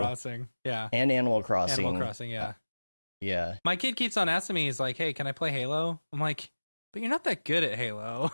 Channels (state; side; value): inverted; both; correlation -1.00